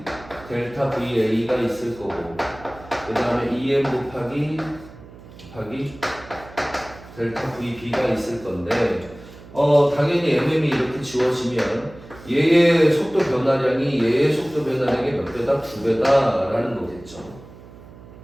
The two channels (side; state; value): right; noise; hum, 19 dB below the sound